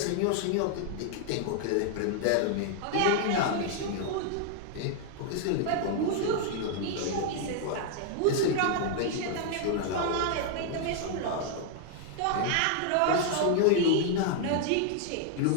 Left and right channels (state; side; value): different; both; correlation 0.00